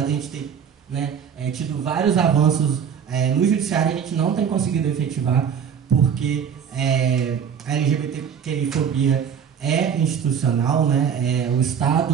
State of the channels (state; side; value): quieter; left; 7.6 dB